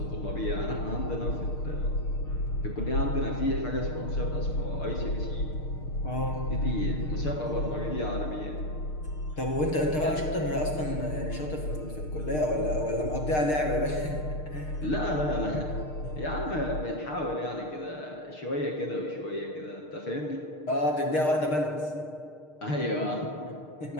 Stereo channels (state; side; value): late; right; 6.6 ms